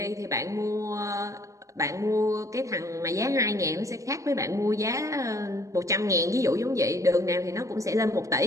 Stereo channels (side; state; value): left; late; 0.15 ms